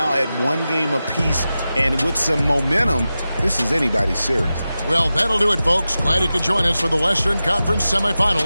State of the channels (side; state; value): both; inverted; correlation -0.93